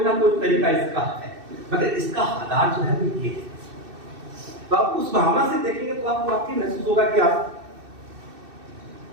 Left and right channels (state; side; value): late; left; 2.6 ms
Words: ना कोई तरीका इसका है, मगर इसका आधार जो है वो ये है। तो आप उस भावना से देखेंगे तो आपको वाकई महसूस होगा कि आप